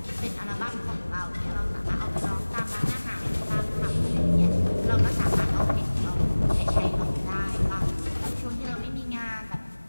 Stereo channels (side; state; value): both; inverted; correlation -1.00